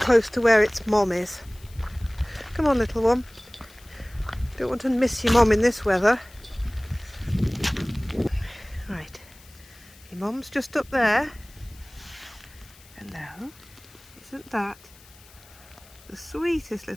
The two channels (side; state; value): left; noise; hiss, 24 dB below the sound